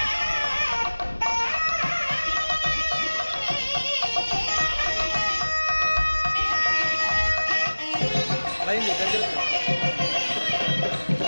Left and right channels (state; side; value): inverted; both; correlation -1.00